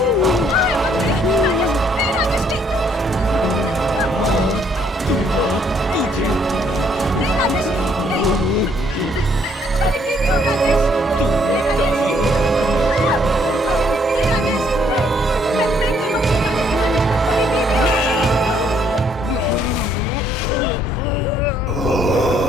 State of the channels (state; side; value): normal; both; correlation 0.67